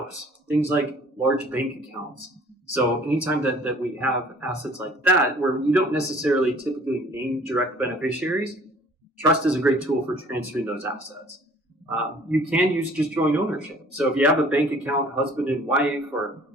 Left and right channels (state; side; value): normal; both; correlation 0.53